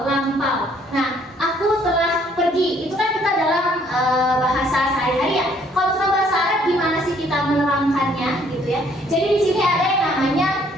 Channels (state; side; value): normal; both; correlation 0.63